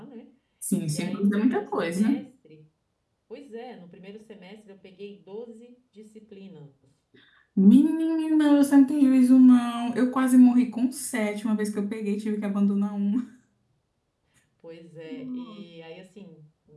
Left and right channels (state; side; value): identical; both; correlation 1.00